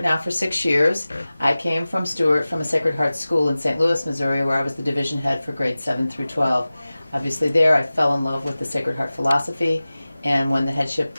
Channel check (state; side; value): inverted; both; correlation -0.97